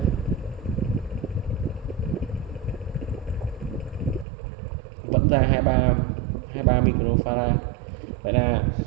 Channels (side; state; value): left; drops out; at 4.2 s